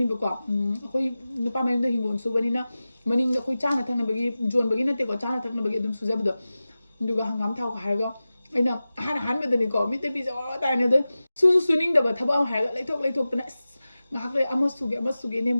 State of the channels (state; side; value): inverted; both; correlation -0.96